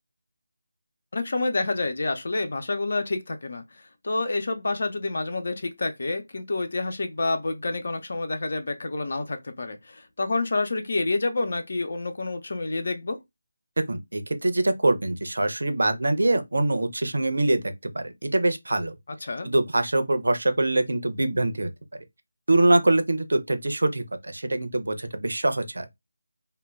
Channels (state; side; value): inverted; both; correlation -0.95